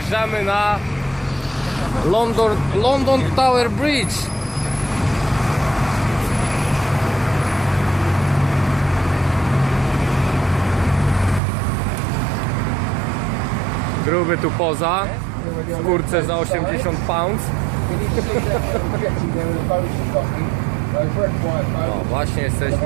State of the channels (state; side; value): drops out; left; at 11.4 s